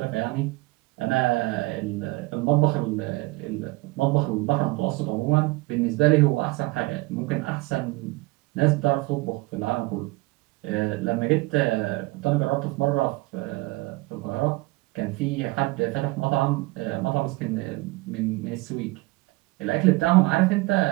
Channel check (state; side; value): quieter; left; 22.5 dB